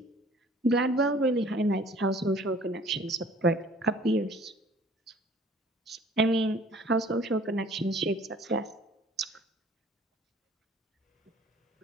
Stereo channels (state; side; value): normal; both; correlation 0.52